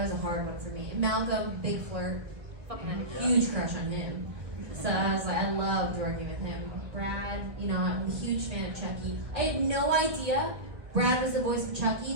a hard one for me. And Malcolm, big flirt, fucking had a huge crush on him. So I was like, I loved working with him. Brad, I'm a huge fan of Chucky. I had no idea Brad was the voice of Chucky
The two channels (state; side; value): late; left; 1.6 ms